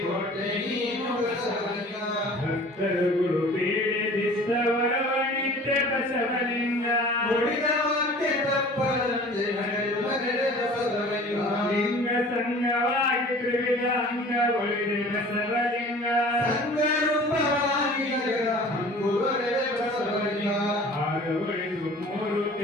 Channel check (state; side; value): normal; both; correlation 0.45